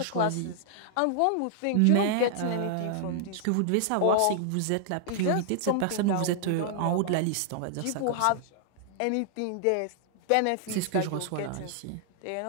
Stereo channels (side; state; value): both; different; correlation -0.01